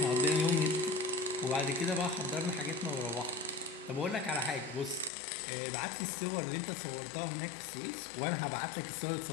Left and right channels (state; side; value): drops out; right; at 5.1 s